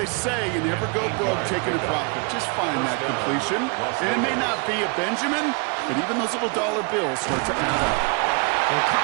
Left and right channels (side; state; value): left; quieter; 33.5 dB